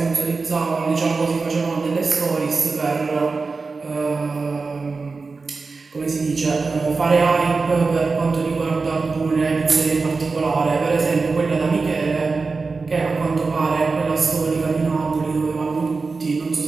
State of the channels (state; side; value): quieter; left; 4.2 dB